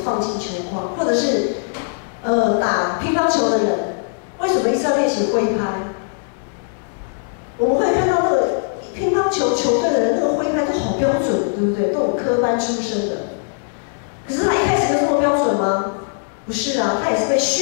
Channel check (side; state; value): right; silent; 63 dB below the other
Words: 放进球框，或者是打乒乓球的人，为什么一直要练习挥拍？我们会看到那个乒乓球球队的人，那个挥拍都好标准，对不对？都有科班出身的。可是他一开始就这么标准吗？不是啊，他也是被